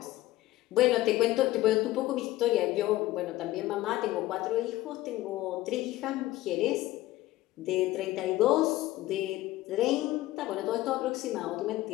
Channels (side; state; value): right; quieter; 16.7 dB